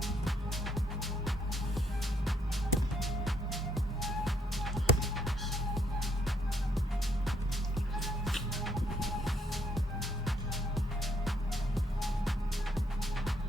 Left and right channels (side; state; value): both; normal; correlation 0.71